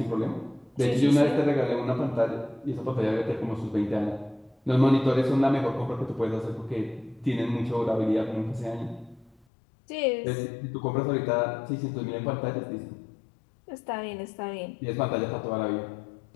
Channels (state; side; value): drops out; right; at 9.5 s